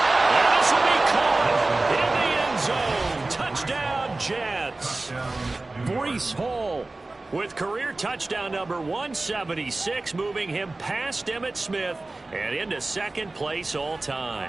this will be caught in the end zone. Touchdown, Jets. Breece Hall With career touchdown number 176, moving him past Emmitt Smith and into 2nd place all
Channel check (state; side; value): quieter; left; 3.1 dB